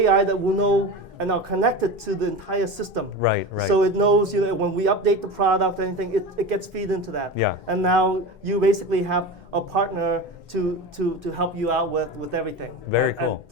that will know and are connected to the entire system. Right. So it knows, you know, when we update the product or anything, it gets feed into that. Yeah. And now you basically have a partner to help you out with everything. Very cool.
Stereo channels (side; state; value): both; normal; correlation 0.27